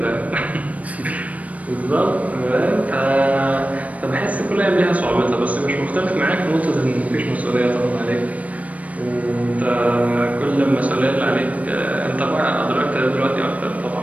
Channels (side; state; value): left; late; 0.068 ms